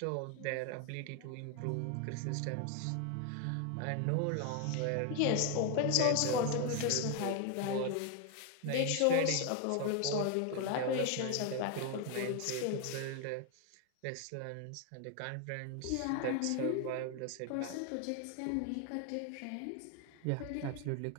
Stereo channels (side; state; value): both; different; correlation 0.01